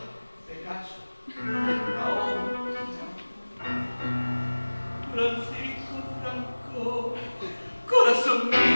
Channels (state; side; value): inverted; both; correlation -1.00